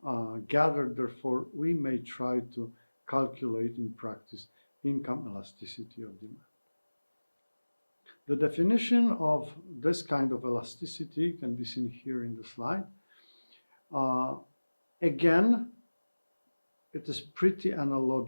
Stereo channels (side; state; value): both; inverted; correlation -1.00